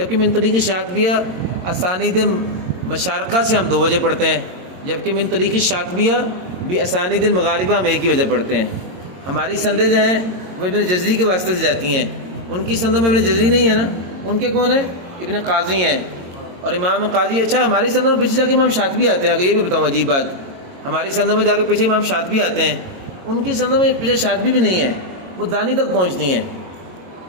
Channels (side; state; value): left; late; 22 ms